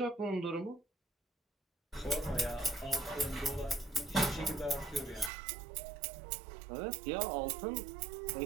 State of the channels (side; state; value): left; drops out; at 5.3 s